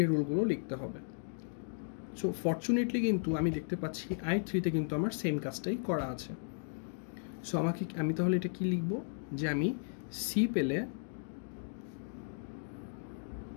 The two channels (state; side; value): silent; right; digital silence